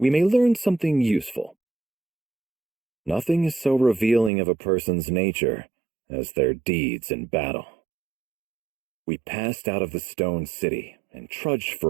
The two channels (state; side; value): drops out; left; at 4.3 s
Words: may learn something useful. Nothing is so revealing of a person's nature as their deeds in battle. We passed out of the stone city and trudged